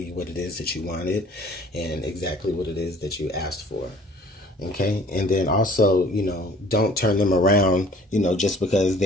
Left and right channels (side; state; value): both; normal; correlation 0.52